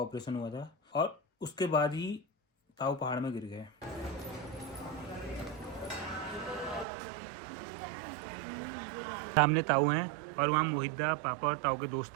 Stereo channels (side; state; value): left; drops out; at 6.9 s